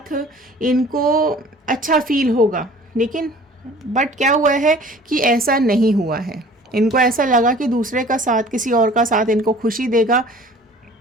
इनको अच्छा फील होगा, लेकिन बट क्या हुआ है कि ऐसा नहीं हुआ है। इनको ऐसा लगा कि दूसरे का साथ, किसी और का साथ इनको खुशी देगा,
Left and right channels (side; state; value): both; normal; correlation 0.48